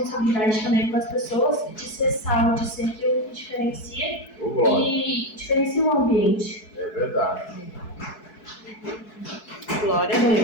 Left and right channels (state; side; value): late; right; 4.6 ms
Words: também com as pessoas de ser sal, de ser aquilo que diferencia e diferencia o ambiente. É verdade. Glória a